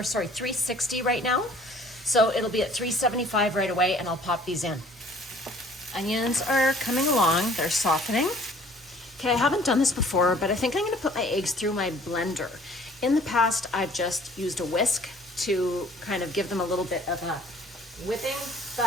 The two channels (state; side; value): normal; both; correlation 0.54